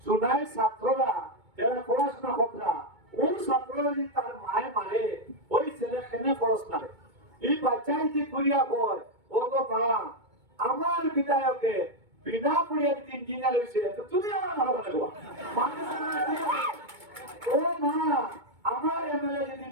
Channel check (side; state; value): left; late; 2.2 ms